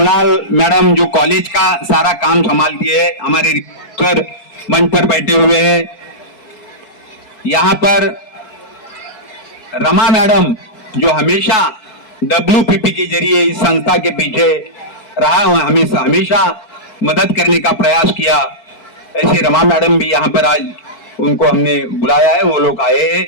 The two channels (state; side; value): late; right; 4.6 ms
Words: मैडम जो कॉलेज का सारा काम संभालती है, हमारे सर मंच पर बैठे हुए हैं। यहाँ पर रमा मैडम जो हमेशा WPP के जरिए इस संस्था के पीछे रहा, हमेशा मदद करने का प्रयास किया, ऐसे रमा मैडम भी यहाँ पर आज उनको हमने बुलाया है, वो लोग आए हैं।